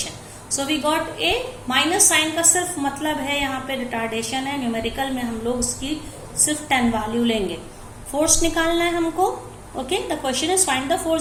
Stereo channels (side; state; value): both; identical; correlation 1.00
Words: So we got a. Minus sign का सिर्फ मतलब है यहाँ पे रिटार्डेशन है. न्यूमेरिकल में हम लोग उसकी सिर्फ 10 वैल्यू लेंगे. फोर्स निकालना है हमको. Okay, the question is find the